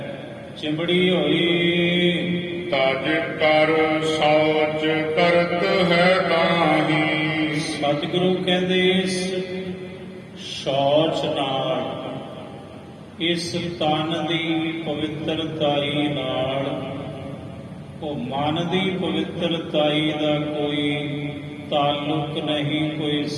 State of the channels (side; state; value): both; identical; correlation 1.00